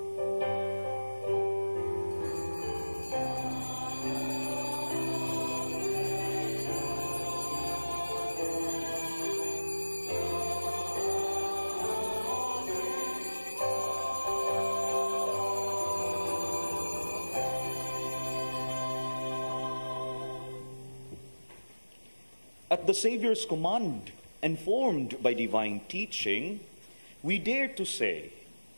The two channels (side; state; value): both; inverted; correlation -1.00